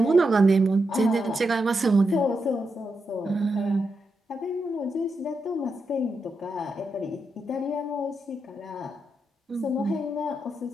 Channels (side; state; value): both; normal; correlation 0.85